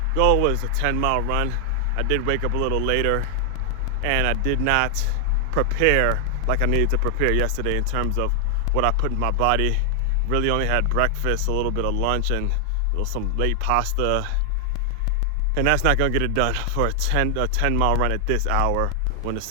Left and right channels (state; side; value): different; both; correlation 0.00